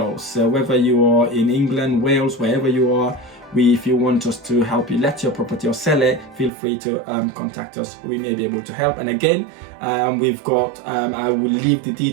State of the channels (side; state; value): left; drops out; at 6.5 s